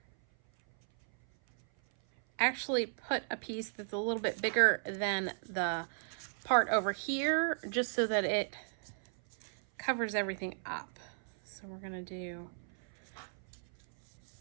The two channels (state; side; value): silent; left; 54 dB below the other